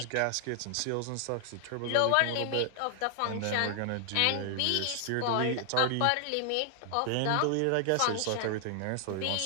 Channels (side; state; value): both; different; correlation 0.00